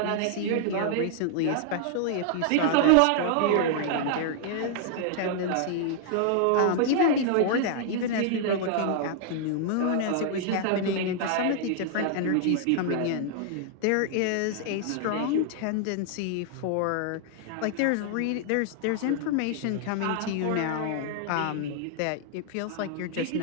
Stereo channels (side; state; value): both; different; correlation -0.01